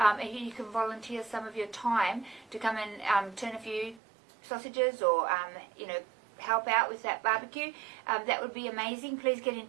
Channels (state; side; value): drops out; left; at 4.0 s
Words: you can volunteer some of your time to come and turn a few sausages or, help out with that barbecue, that would be amazing. Please get in